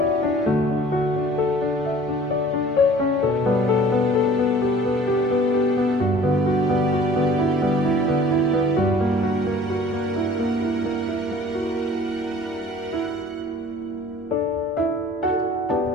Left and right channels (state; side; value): normal; both; correlation 0.49